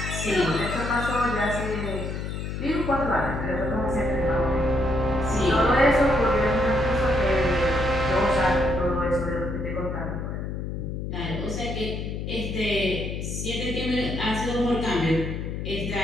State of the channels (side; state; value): left; noise; hum, 5 dB below the sound